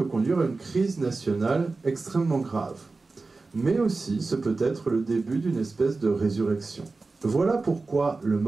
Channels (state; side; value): quieter; left; 3.8 dB